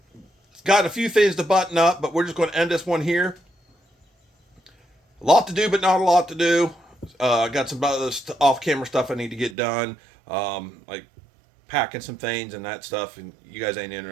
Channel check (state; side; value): drops out; left; at 9.6 s